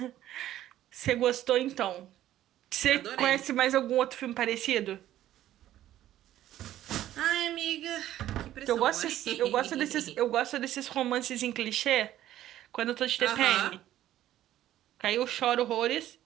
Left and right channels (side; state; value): left; quieter; 13.0 dB